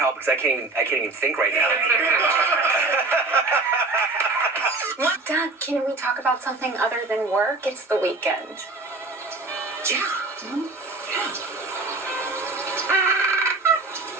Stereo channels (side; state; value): left; quieter; 3.4 dB